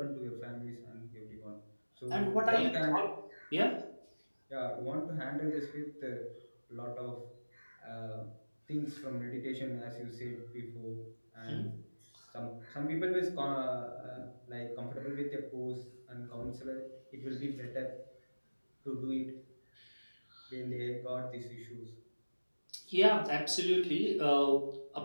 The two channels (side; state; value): both; inverted; correlation -1.00